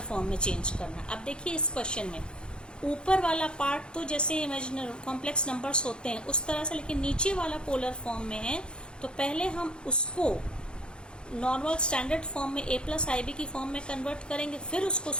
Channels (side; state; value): right; late; 0.051 ms